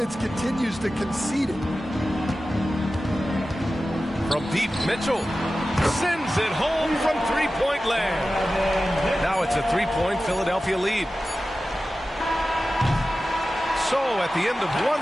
continues to concede it. From deep, Mitchell sends it home from three-point land. Now it's a 3-point Philadelphia lead. So at the end of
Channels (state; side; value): normal; both; correlation 0.95